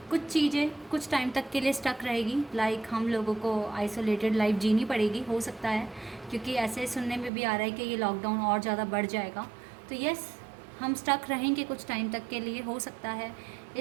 कुछ चीज़ें कुछ टाइम तक के लिए स्टक रहेगी, लाइक हम लोगों को आइसोलेटेड लाइफ जीनी पड़ेगी, हो सकता है, क्योंकि ऐसे सुनने में भी आ रहा है कि ये लॉकडाउन और ज़्यादा बढ़ जाएगा। तो यस हम स्टक रहेंगे कुछ टाइम तक के लिए, हो सकता है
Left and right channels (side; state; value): left; drops out; at 7.3 s